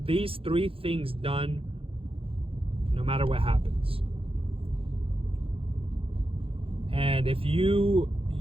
things done, no matter what happens. And if you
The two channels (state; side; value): late; left; 0.27 ms